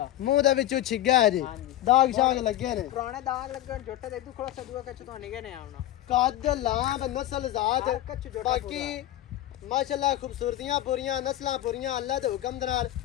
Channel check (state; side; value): quieter; right; 13.7 dB